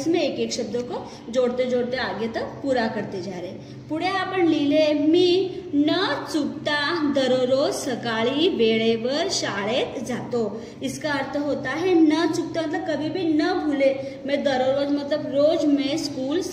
एक एक शब्दों को जोड़ते जोड़ते आगे तक पूरा करते जा रहे। पुढे आपण लिहिले, मी न चुकता दररोज सकाळी वेळेवर शाळेत जातो। इसका अर्थ होता है न चुकता मतलब कभी भी न भूले, मैं दररोज मतलब रोज मैं स्कूल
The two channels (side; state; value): both; identical; correlation 1.00